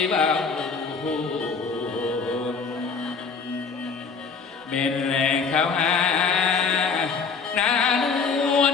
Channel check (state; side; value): quieter; right; 5.2 dB